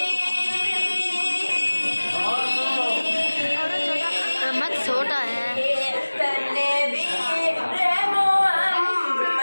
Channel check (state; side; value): inverted; both; correlation -1.00